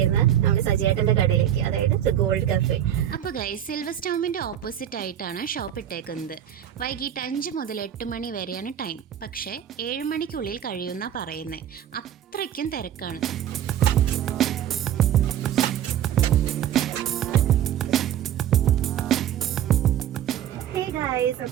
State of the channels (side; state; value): left; quieter; 10.6 dB